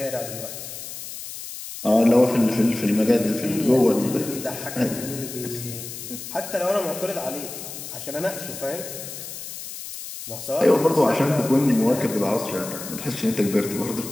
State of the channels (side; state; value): left; noise; hiss, 10 dB below the sound